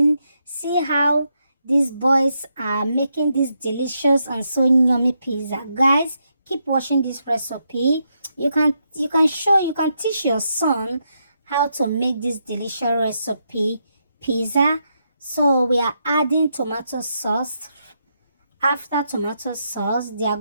See how these boys are making this delicious and so yummy pizza. Guys, keep watching this recipe. You can teach your son how to make this delicious recipe pizza. So we are adding tomato sauce. After tomato sauce, they are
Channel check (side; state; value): both; inverted; correlation -0.81